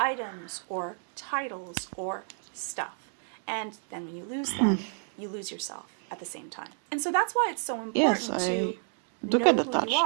or titles or stuff. And then when you lose them, you lose yourself at the same time. And so that's why it's so important Yes, to I do know get who you attached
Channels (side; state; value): left; silent; 58 dB below the other